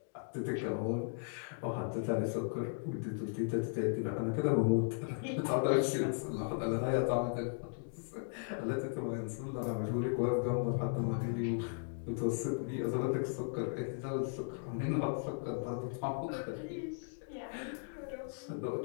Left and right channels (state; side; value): silent; right; digital silence